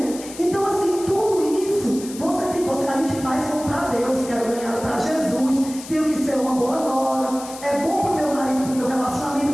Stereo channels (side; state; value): left; noise; hiss, 14 dB below the sound